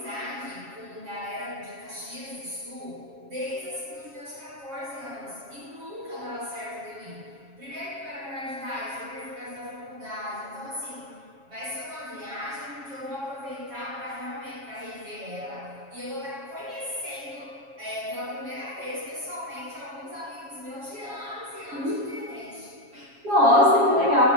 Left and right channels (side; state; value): left; late; 7.3 ms